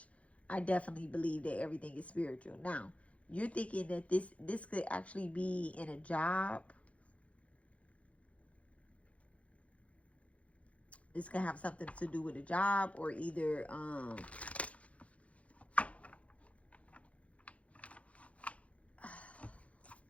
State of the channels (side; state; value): right; late; 0.064 ms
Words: I definitely believe that everything is spiritual. Now, you're thinking that this could actually be in a job. This could have something to do with a job, or either